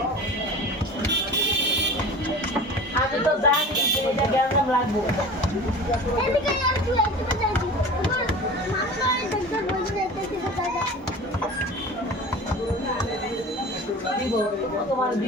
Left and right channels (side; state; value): both; normal; correlation 0.37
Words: আমি তো জানি এটা কেমন লাগবে এদিকে আর তুই একটু যাচ্ছি তোমার মাথায় দেখতে বলছি দেখতে দাদা দিব তোমার